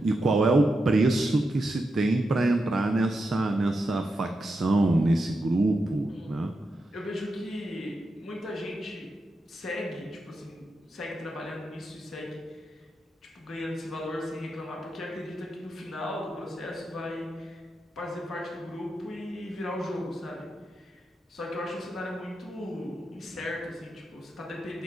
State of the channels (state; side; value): normal; both; correlation 0.86